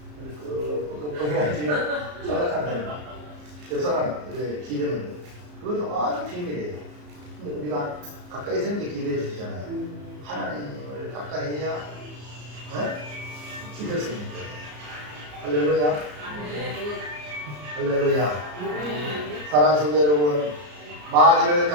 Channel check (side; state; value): left; late; 34 ms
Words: 보기가 지금 자작한다. 옆 사람 기대면 그것도 아주 비밀이에요. 근데 우리가 가까이 있는 게 기대해 주시잖아요. 하나님을 가까이 해야 기댈 수 있는 거예요. 할렐루야. 할렐루야. 사랑하는 성도 여러분, 마귀를